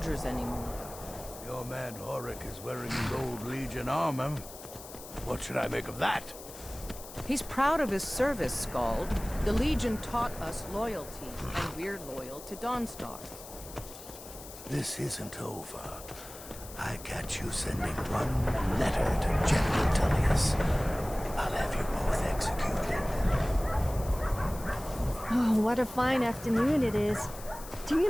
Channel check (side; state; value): left; noise; hiss, 15 dB below the sound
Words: anymore. Your man Horik is wearing his old Legion armor. What should I make of that? He's proud of his service, Skald. The Legion taught us loyalty, and we're loyal to Dawnstar. This isn't over. I catch you sending one letter to General Tullius. I'll have you both executed. Oh, what a fine afternoon it is. Do